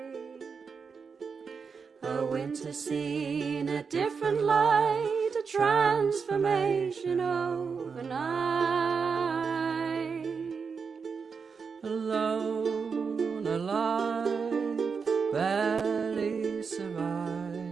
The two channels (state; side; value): quieter; left; 5.6 dB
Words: A winter scene, a different light, a transformation overnight. Alone, alive, barely